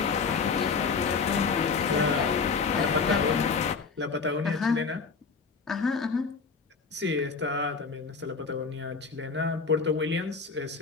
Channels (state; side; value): quieter; right; 5.0 dB